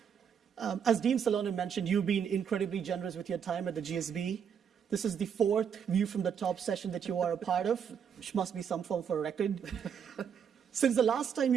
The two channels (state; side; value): quieter; left; 7.6 dB